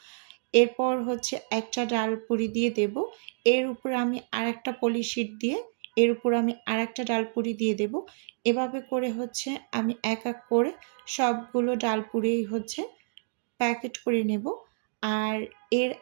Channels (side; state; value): left; silent; digital silence